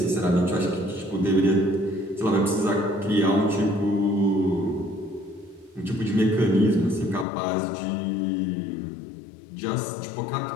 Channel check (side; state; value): right; drops out; at 7.2 s